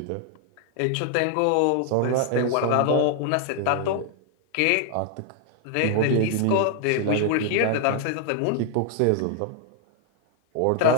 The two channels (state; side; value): different; both; correlation 0.00